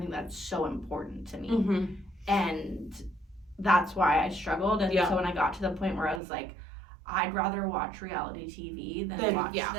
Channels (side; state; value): left; drops out; at 6.2 s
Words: that's so important to me. And that's why I struggled. And so when I got to the point where I was like, I'd rather watch reality TV than watch